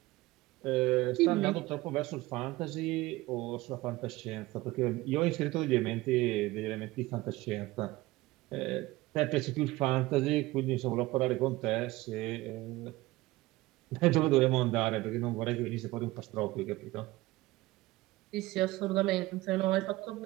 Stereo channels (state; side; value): quieter; left; 19.3 dB